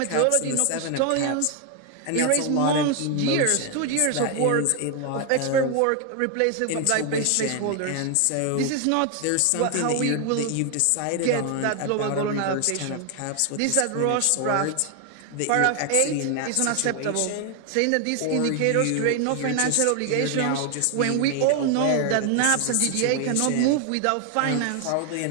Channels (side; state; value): both; different; correlation 0.01